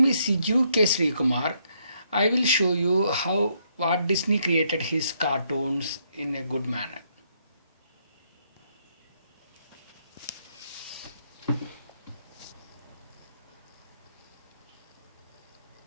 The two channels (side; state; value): both; inverted; correlation -0.73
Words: is Siju K. Kumar. I will show you how Walt Disney created his cartoons in a good manner.